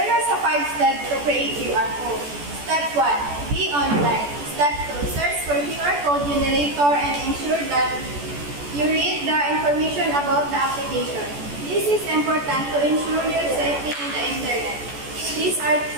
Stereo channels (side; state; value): left; late; 14 ms